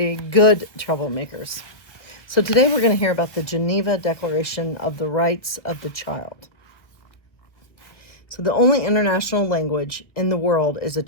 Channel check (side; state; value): right; late; 1.4 ms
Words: good troublemakers. So today we're going to hear about the Geneva Declaration of the Rights of the Child. So the only international language in the world is a